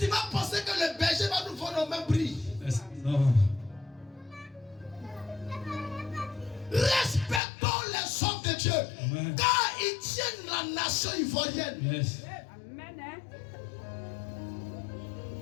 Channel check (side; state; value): right; drops out; at 7.4 s